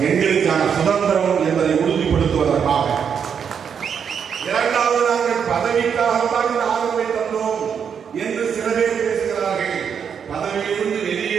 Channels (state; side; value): quieter; left; 7.3 dB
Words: எங்களுக்கான சுதந்திரம் என்பதை உறுதிப்படுத்துவதற்காக. 2வது, நாங்கள் பதவிக்காகத்தான் இந்த ஆதரவை தந்தோம் என்று சில பேர் பேசுகிறார்கள். பதவியிலிருந்து